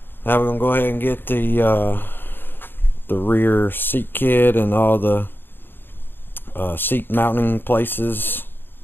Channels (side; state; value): right; late; 0.099 ms